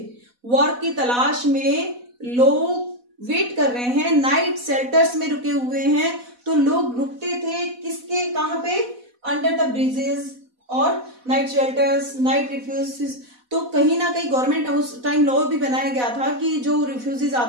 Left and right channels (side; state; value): left; late; 4.1 ms